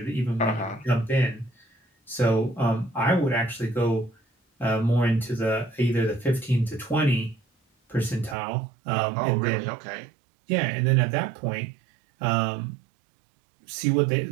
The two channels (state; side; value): drops out; left; at 8.3 s